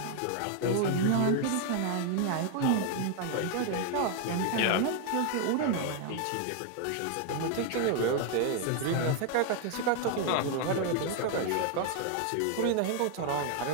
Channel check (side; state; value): both; different; correlation 0.00